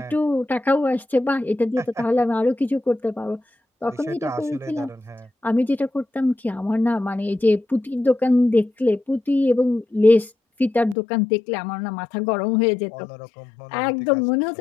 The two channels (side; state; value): right; drops out; at 11.0 s